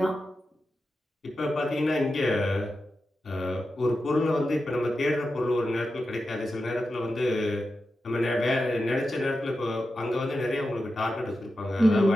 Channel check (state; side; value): normal; both; correlation 0.90